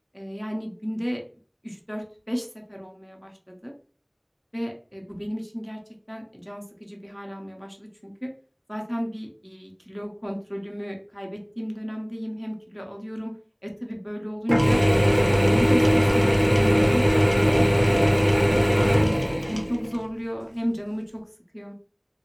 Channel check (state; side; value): identical; both; correlation 1.00